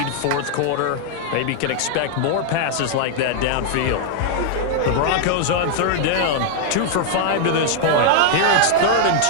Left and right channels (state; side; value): different; both; correlation 0.00